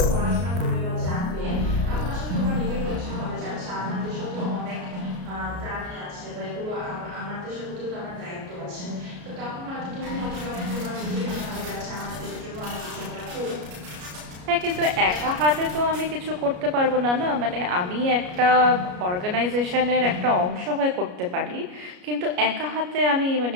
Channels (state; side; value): late; left; 33 ms